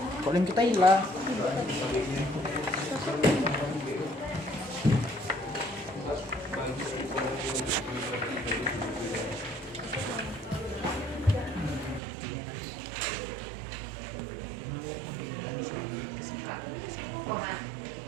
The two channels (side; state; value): left; drops out; at 12.0 s